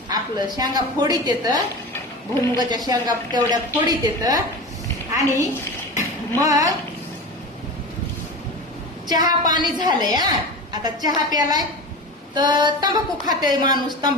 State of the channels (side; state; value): both; normal; correlation 0.29